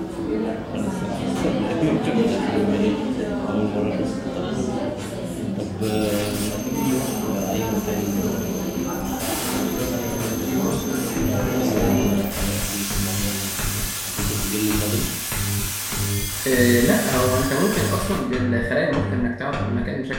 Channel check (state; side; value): identical; both; correlation 1.00